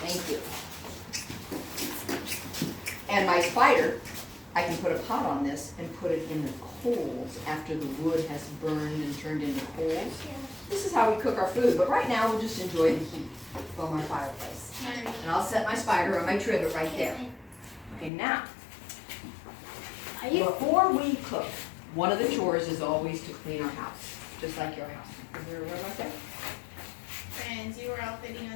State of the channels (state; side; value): drops out; right; at 18.1 s